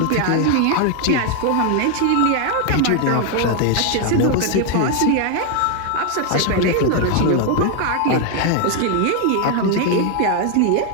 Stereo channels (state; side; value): different; both; correlation 0.00